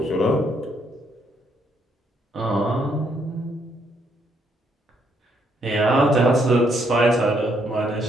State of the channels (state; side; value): normal; both; correlation 0.72